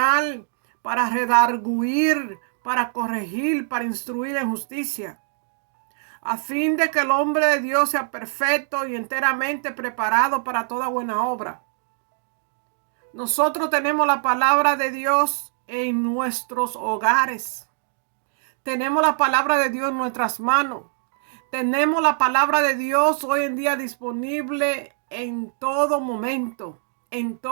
para redarguir, para corregir, para instruir en justicia, a fin de que el hombre de Dios sea perfecto y enteramente preparado para toda buena obra. Nosotros tenemos la palabra de Dios en nuestros hogares. Tenemos la palabra de Dios en nuestras manos. Tenemos la palabra de Dios hoy en día disponible en todo momento, en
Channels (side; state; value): left; silent; digital silence